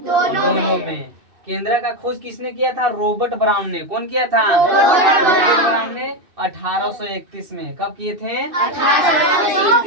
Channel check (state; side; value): late; left; 2.6 ms